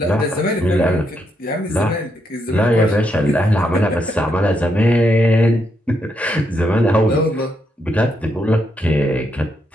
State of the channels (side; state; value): both; normal; correlation 0.79